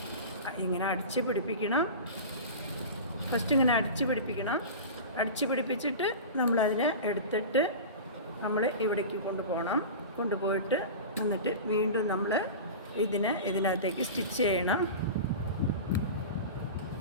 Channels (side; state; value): both; inverted; correlation -0.30